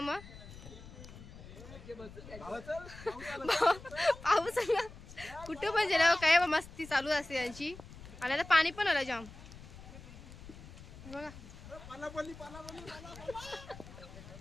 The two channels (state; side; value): noise; left; rumble, 16 dB below the sound